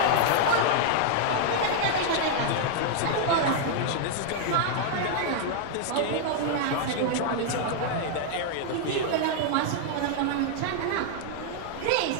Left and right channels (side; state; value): both; different; correlation 0.00